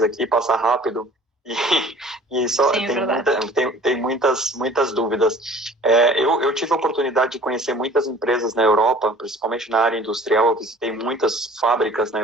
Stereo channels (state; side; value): normal; both; correlation 0.48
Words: aqui, passa rápido. E só tem muitas dúvidas. Eu tive a oportunidade de conhecer muitas empresas na Europa, principalmente na área industrial. Eu visitei muitas fábricas na